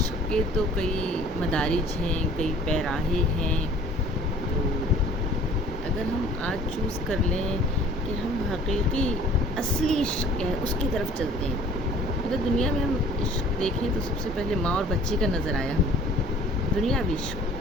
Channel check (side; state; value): both; normal; correlation 0.51